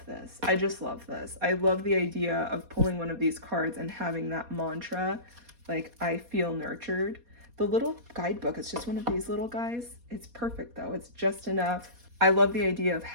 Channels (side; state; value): left; late; 4.2 ms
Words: this. I just love this. I love the idea of pulling one of these cards and having that mantra, like I feel nurtured. The little guidebook, it's just one of these little guys. It's perfect though. It's just enough. I love the idea of